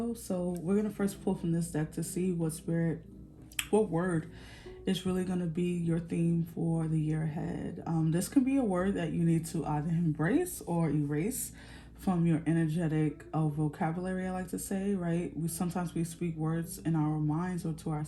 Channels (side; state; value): both; identical; correlation 1.00